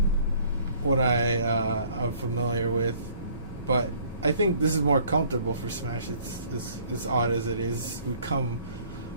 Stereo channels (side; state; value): both; inverted; correlation -0.58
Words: what I'm familiar with. But I think this is more comfortable for Smash. It's odd as it is. We come